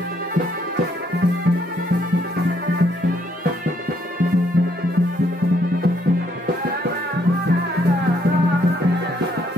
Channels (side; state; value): both; normal; correlation 0.70